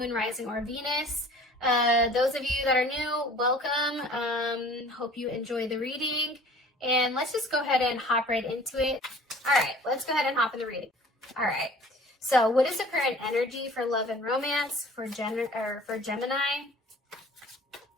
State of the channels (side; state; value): both; normal; correlation 0.48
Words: Rising, or Venus. Those of you that are new, welcome. Hope you enjoy the reading. And let's just go ahead and hop right into it. All right, let's go ahead and hop in the reading. All right, so what is the current energy for love and romance for Gemini?